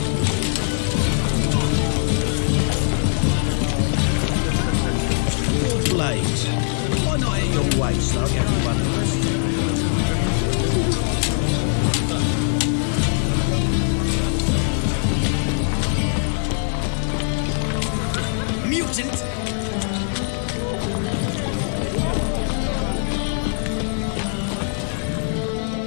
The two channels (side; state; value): right; silent; digital silence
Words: blades. Why not at your waist like everyone else? Mutant!